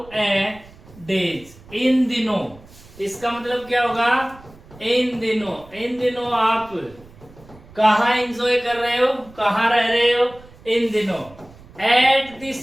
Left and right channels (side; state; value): right; noise; rumble, 23 dB below the sound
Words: ए डेज, इन दिनों। इसका मतलब क्या होगा? इन दिनों। इन दिनों आप कहा एंजॉय कर रहे हो, कहा रह रहे हो? इन दिनों। Eight